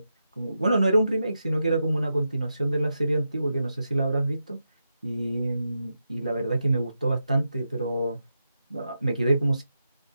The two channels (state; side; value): inverted; both; correlation -0.87